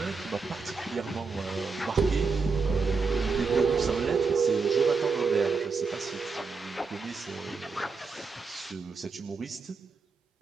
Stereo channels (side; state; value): left; quieter; 4.7 dB